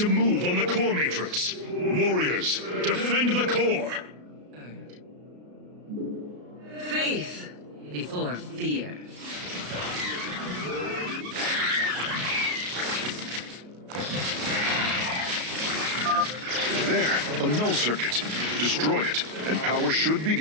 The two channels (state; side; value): late; left; 33 ms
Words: move on the core matrix. Warriors, defend the core! Faith before fear. There, a null circuit. Destroy it, and power should